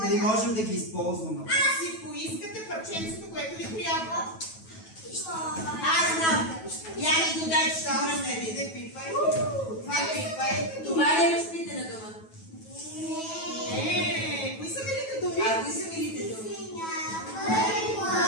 дали можем да ги използваме. Си поискате парченцето, което ви трябва. Аз знам. Я ми го дай, че ще върне. Не пипай. Това пипай. Това ли е разпитана дума? Не, кои са милите думи? А кои са милите думи?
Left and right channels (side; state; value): right; late; 9.2 ms